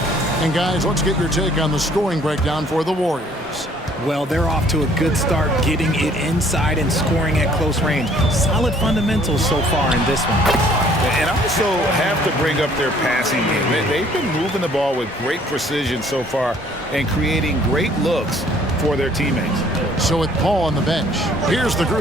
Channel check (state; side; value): normal; both; correlation 0.59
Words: And guys, let's get your take on the scoring breakdown for the Warriors. Well, they're off to a good start getting it inside and scoring at close range. Solid fundamentals so far in this one. And I also have to bring up their passing game. They've been moving the ball with great precision so far and creating great looks for their teammates. So with Paul on the bench, here's the